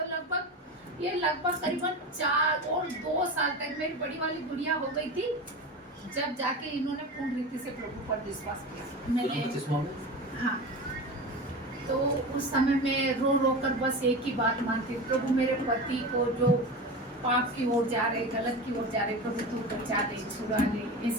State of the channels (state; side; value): normal; both; correlation 0.27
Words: लगभग करीबन 4 और 2 साल तक मेरी बड़ी वाली गुड़िया हो गई थी, जब जाके इन्होंने पूर्ण रीति से प्रभु पर विश्वास किया। मैंने हाँ, तो उस समय में रो रो कर बस एक ही बात मानती, प्रभु मेरे पति को जो पाप की ओर जा रहे, गलत की ओर जा रहे, प्रभु तू बचा दे, छुड़ा ले।